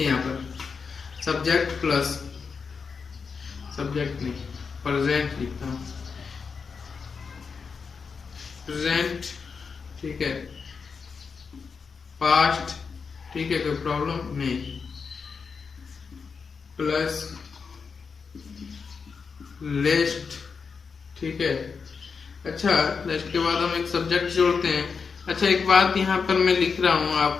यहाँ पर सब्जेक्ट प्लस, सब्जेक्ट नहीं, प्रेजेंट लिखता हूँ, प्रेजेंट, ठीक है, पास्ट, ठीक है, कोई प्रॉब्लम नहीं, प्लस लिस्ट, ठीक है। अच्छा, लिस्ट के बाद हम एक सब्जेक्ट जोड़ते हैं। अच्छा, एक बात यहाँ पर मैं लिख रहा हूँ,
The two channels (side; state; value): right; quieter; 5.4 dB